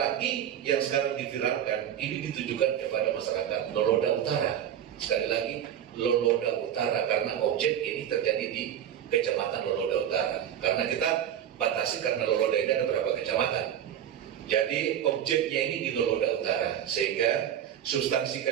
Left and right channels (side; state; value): left; quieter; 10.1 dB